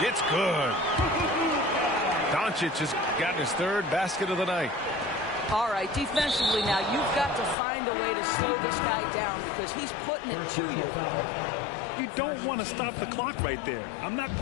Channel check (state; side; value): drops out; right; at 7.6 s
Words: It's good. Doncic has gotten his third basket of the night. All right, defensively now, you've got to find a way to slow this guy down because he's putting it to you. You don't want to stop the clock right there. I'm not